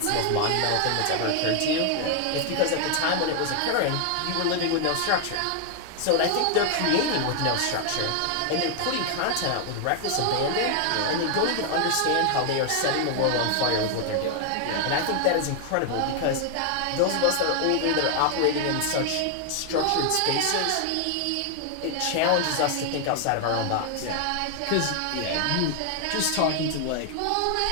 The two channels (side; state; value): both; different; correlation 0.00